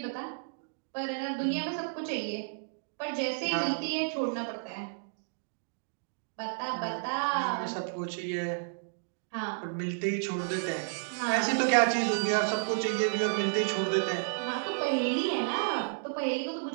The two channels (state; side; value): silent; left; digital silence